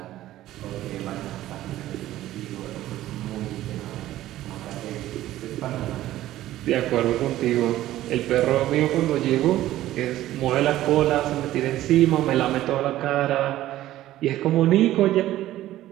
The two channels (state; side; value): quieter; left; 14.5 dB